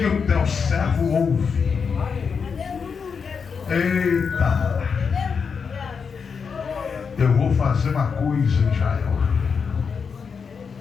o teu servo ouve. Eita, eu vou fazer uma coisa em Israel.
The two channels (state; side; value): quieter; right; 5.9 dB